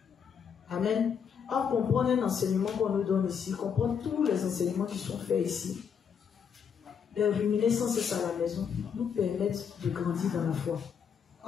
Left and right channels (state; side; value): quieter; right; 7.1 dB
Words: Amen. Or, comprendre un enseignement qu'on nous donne ici, comprendre tous les enseignements qui sont faits ici, les ruminer sans cesse à la maison, nous permettent de grandir dans la foi.